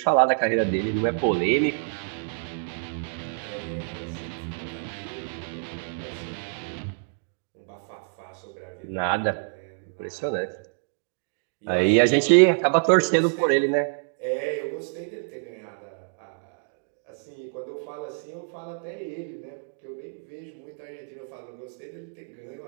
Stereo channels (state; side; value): silent; left; digital silence